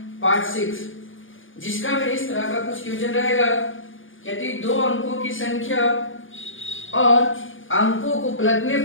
पार्ट 6, जिसका में इस तरह का कुछ क्वेश्चन रहेगा। यदि दो अंकों की संख्या और अंकों को पलटने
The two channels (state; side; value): late; right; 0.58 ms